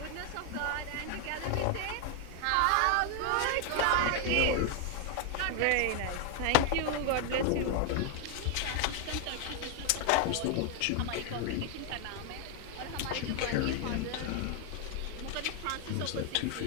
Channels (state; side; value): different; both; correlation 0.00